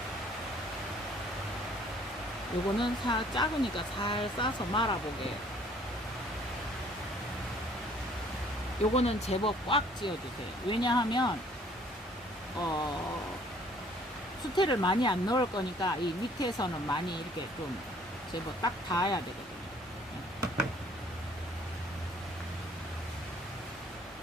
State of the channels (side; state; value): both; normal; correlation 0.57